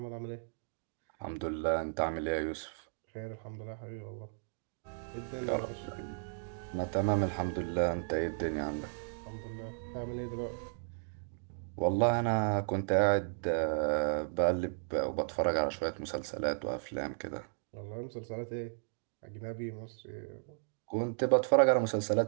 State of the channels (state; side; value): silent; left; digital silence